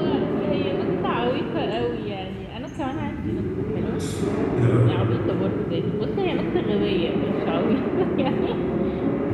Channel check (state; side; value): identical; both; correlation 1.00